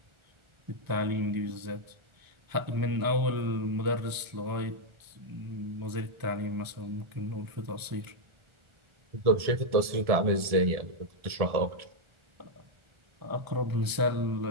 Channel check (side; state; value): left; late; 1.4 ms